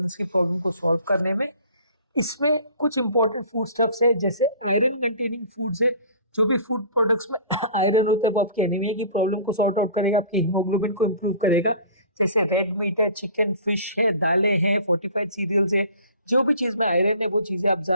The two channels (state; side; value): inverted; both; correlation -0.46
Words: की प्रॉब्लम को सॉल्व करने में। इसमें कुछ इंपॉर्टेंट फूड स्टफ्स है, जैसे आयरन कंटेनिंग फूड्स है। जो भी फूड प्रोडक्ट्स में आयरन होता है वो आपकी एनीमिया की प्रॉब्लम को सॉर्ट आउट करेगा, आपकी हीमोग्लोबिन को इम्प्रूव करेगा। जैसे रेड मीट है, चिकन, फिश है, दालें हैं, फोर्टिफाइड सीरियल्स है, जो भी चीज़ में आयरन है वो चीज़ें आप